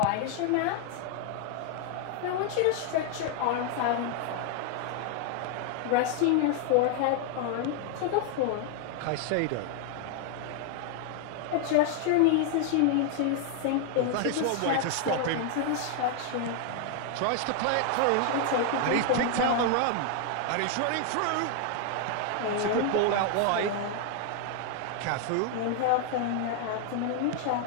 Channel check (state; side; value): different; both; correlation 0.00